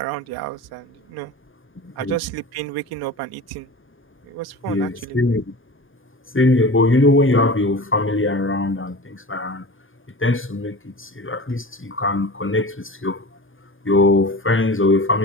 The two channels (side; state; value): both; normal; correlation 0.34